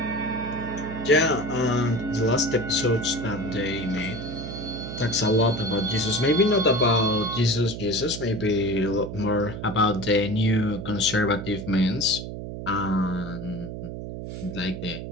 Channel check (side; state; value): right; noise; hum, 8 dB below the sound